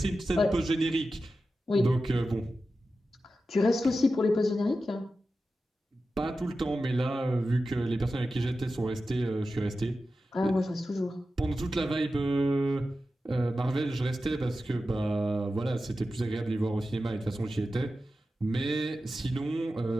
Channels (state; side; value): normal; both; correlation 0.92